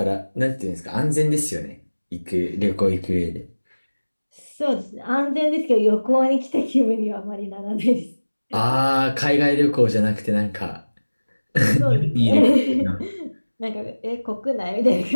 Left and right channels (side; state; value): both; inverted; correlation -1.00